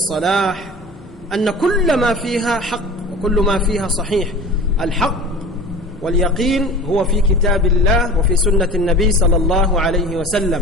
أن كل ما فيها حق وكل ما فيها صحيح. الحق واليقين هو في كتاب الله وفي سنة النبي صلى الله عليه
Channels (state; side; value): normal; both; correlation 0.37